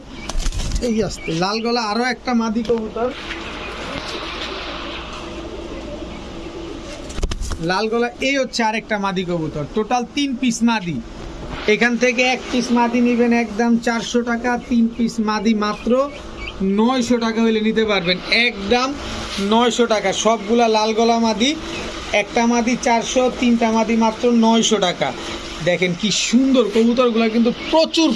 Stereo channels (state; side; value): identical; both; correlation 1.00